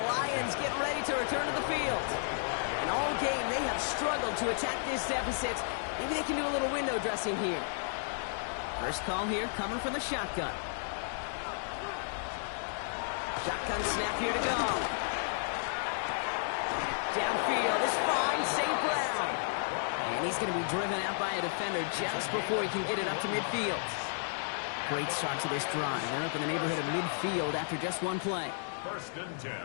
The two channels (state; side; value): silent; right; digital silence